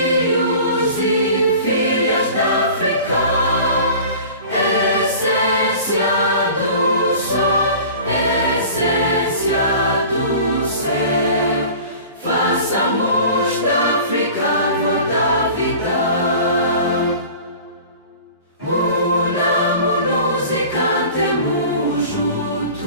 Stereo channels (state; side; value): inverted; both; correlation -0.41